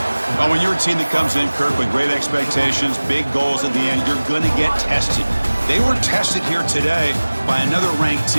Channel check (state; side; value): inverted; both; correlation -1.00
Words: Well, when you're a team that comes in, Kirk, with great expectations, big goals at the end, you're going to get tested. They were tested here today by another ranked